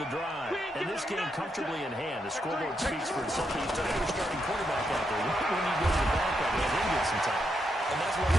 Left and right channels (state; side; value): normal; both; correlation 0.81